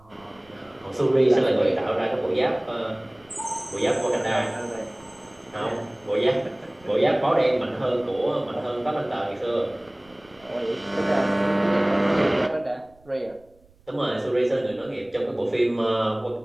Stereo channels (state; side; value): noise; right; rumble, 30 dB below the sound